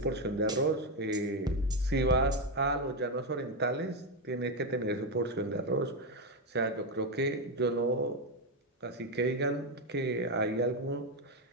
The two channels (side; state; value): both; normal; correlation 0.07